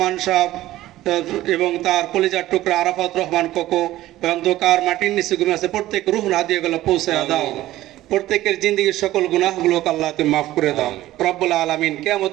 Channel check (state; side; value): quieter; left; 15.4 dB